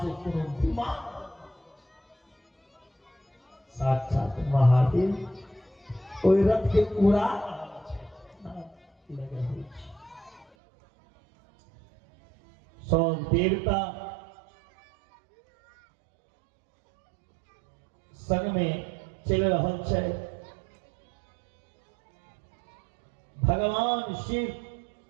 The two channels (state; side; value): drops out; left; at 10.5 s